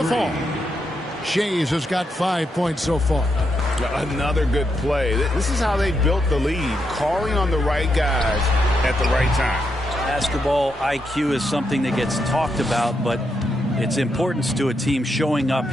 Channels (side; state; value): both; normal; correlation 0.82